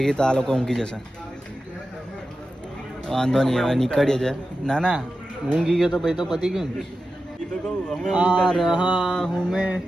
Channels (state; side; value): normal; both; correlation 0.92